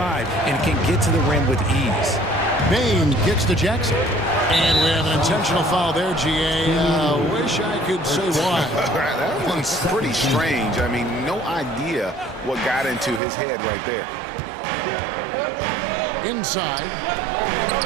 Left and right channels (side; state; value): left; drops out; at 13.2 s